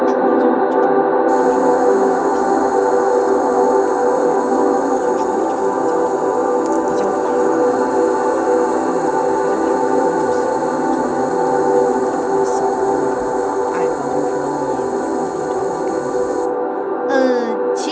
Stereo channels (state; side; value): identical; both; correlation 1.00